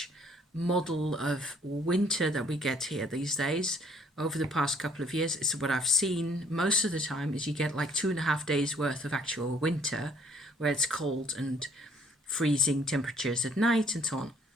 model of winter that we get here these days. Over the past couple of years, it's what I've seen most of the time is you get like 2.5 days worth of actual winter where it's cold and freezing temperatures at night and so on.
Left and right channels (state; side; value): normal; both; correlation 0.62